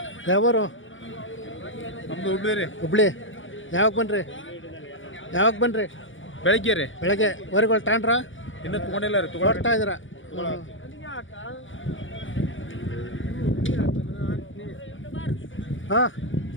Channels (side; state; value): right; late; 0.56 ms